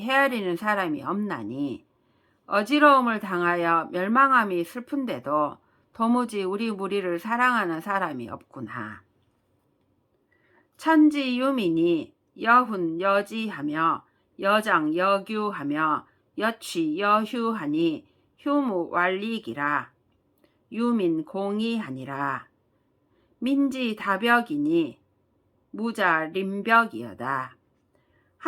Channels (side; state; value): both; identical; correlation 1.00